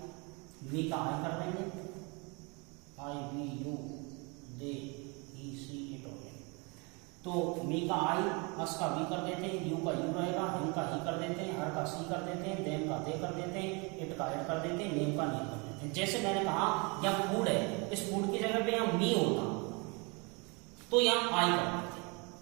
मी का आई कर देंगे, I we you they he she it हो गया। तो मी का आई, अस का वी कर देते हैं, यू का यू रहेगा, हिम का ही कर देते हैं, हर का सी कर देते हैं, देम का दे कर देते हैं, इट का इट कर देते हैं, नेम का नेम कर देते हैं। जैसे मैंने कहा या फूड है इस फूड की जगह पे यहाँ मी होता तो यहाँ आई कर देते,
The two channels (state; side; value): quieter; left; 30.3 dB